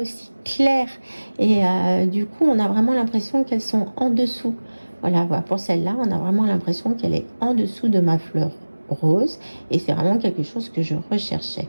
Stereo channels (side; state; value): both; inverted; correlation -1.00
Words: claires. Et du coup, on a vraiment l'impression qu'elles sont en dessous. Voilà, pour celle-là, on a vraiment l'impression qu'elle est en dessous de ma fleur rose. Et c'est vraiment quelque chose que je recherchais.